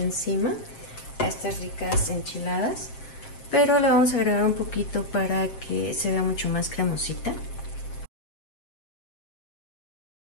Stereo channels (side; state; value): right; late; 7.6 ms